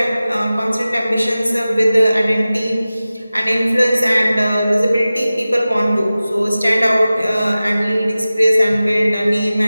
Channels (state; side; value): inverted; both; correlation -0.96